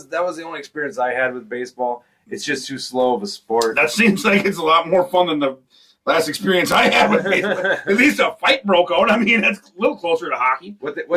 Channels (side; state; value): both; identical; correlation 1.00